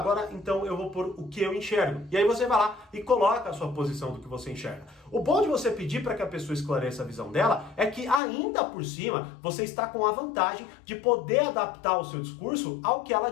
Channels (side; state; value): right; drops out; at 8.2 s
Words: então eu vou pôr o que eu enxergo. E aí você vai lá e coloca a sua posição do que você enxerga. O bom de você pedir para que a pessoa esclareça a visão dela é que ainda por cima você está com a vantagem de poder adaptar o seu discurso ao que ela